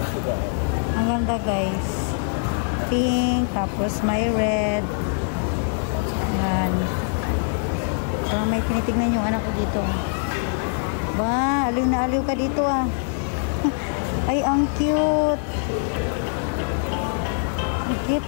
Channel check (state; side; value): silent; right; digital silence